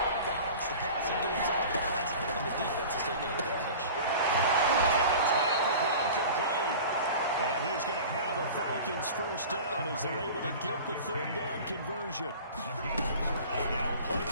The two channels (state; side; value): inverted; both; correlation -0.39